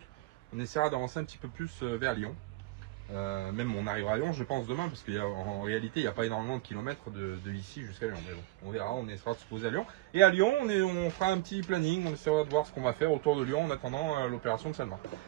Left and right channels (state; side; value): quieter; left; 18.9 dB